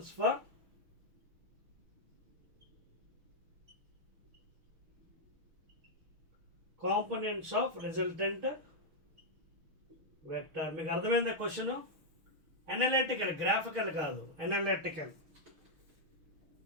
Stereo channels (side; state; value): left; late; 6.3 ms